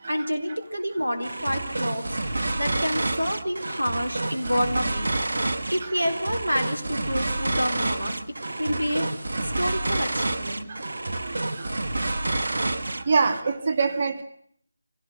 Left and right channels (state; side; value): inverted; both; correlation -0.95